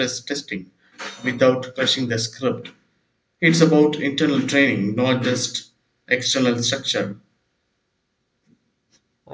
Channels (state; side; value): identical; both; correlation 1.00